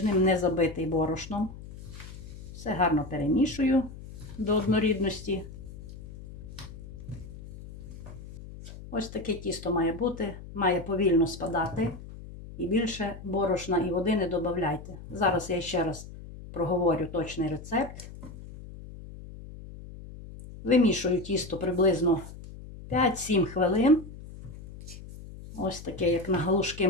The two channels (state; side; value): noise; left; hum, 14 dB below the sound